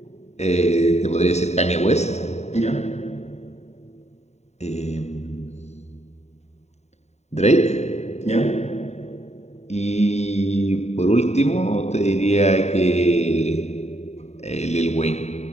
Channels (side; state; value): right; late; 0.32 ms